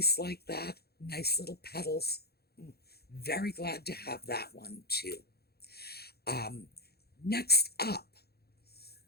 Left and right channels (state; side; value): late; right; 0.46 ms